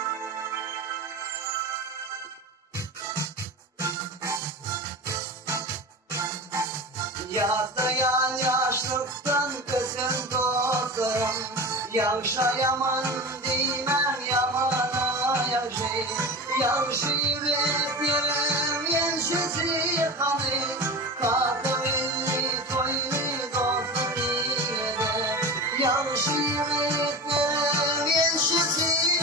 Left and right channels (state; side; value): normal; both; correlation 0.29